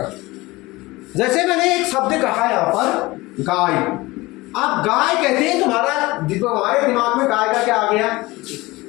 जैसे मैंने एक शब्द कहा यहाँ पर, गाय। अब गाय कहते हैं, तुम्हारे दिमाग में गाय का क्या आ गया?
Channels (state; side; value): quieter; right; 20.9 dB